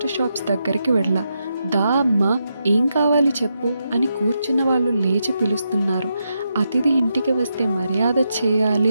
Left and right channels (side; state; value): both; inverted; correlation -0.84